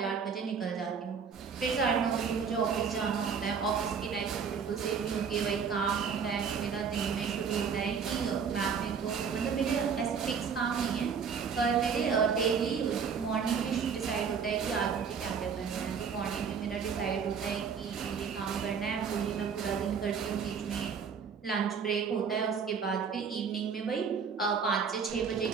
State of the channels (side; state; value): left; quieter; 6.3 dB